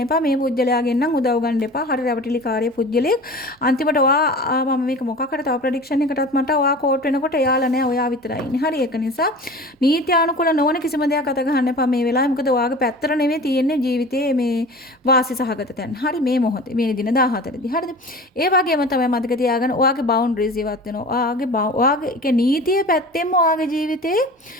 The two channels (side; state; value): both; normal; correlation 0.38